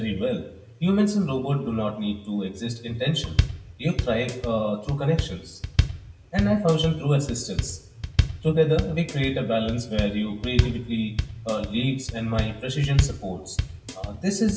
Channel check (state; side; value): identical; both; correlation 1.00